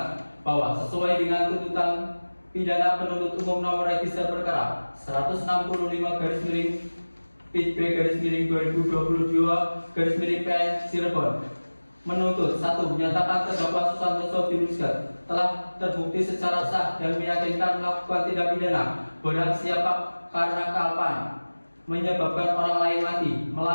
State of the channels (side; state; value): both; inverted; correlation -1.00